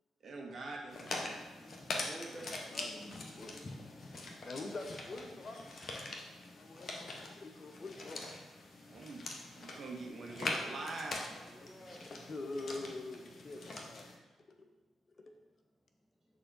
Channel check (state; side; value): normal; both; correlation 0.83